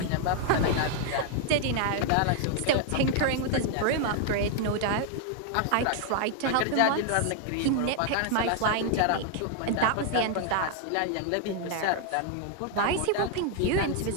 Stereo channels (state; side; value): different; both; correlation 0.00